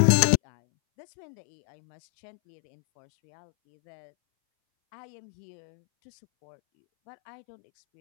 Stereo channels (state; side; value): silent; right; 60 dB below the other